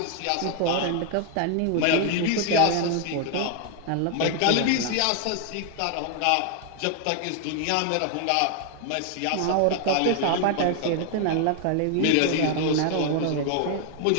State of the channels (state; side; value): different; both; correlation 0.00